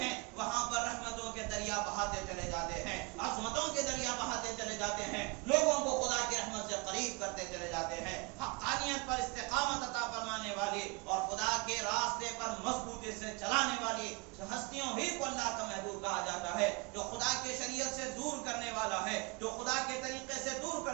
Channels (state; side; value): quieter; left; 28.7 dB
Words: وہاں پر رحمتوں کے دریا بہاتے چلے جاتے ہیں، عظمتوں کے دریا بہاتے چلے جاتے ہیں، لوگوں کو خدا کی رحمت سے قریب کرتے چلے جاتے ہیں. حقانیت پر استقامت عطا فرمانے والی اور خدا کے راستے پر مضبوطی سے چلانے والی ہستیوں ہی کو اللہ کا محبوب کہا جاتا ہے. جو خدا کی شریعت سے دور کرنے والا ہے، جو خدا کے طریقے سے دور